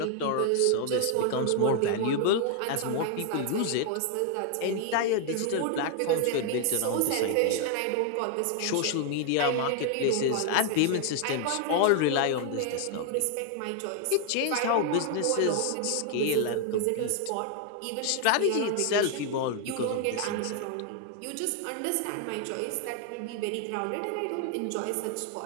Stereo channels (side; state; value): both; different; correlation 0.00